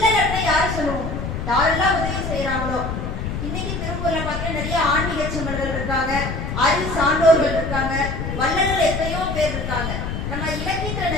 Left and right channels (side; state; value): left; noise; rumble, 4 dB below the sound